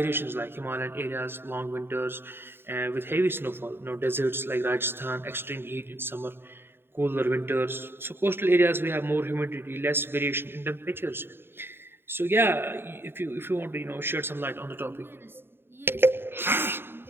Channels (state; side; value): late; left; 0.11 ms